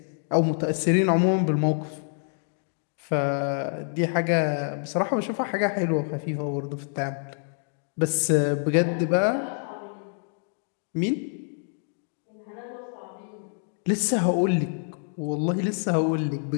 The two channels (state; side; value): silent; right; 60 dB below the other